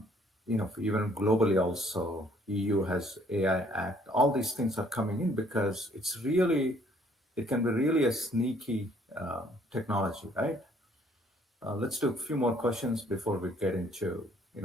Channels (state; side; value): normal; both; correlation 0.62